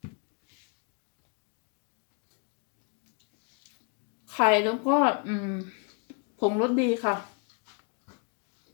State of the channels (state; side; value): quieter; right; 35.3 dB